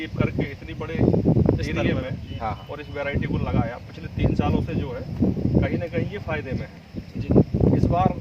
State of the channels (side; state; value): both; identical; correlation 1.00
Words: और इस वैरायटी को लगाया पिछले 3 सालों से जो है कहीं ना कहीं ये फायदे में है जी इस बार